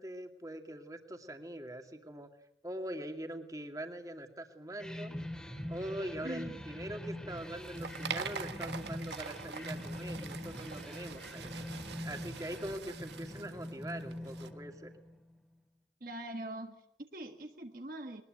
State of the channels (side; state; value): both; normal; correlation 0.65